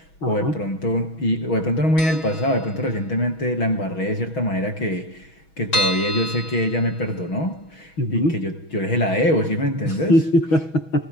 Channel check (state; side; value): late; right; 6.2 ms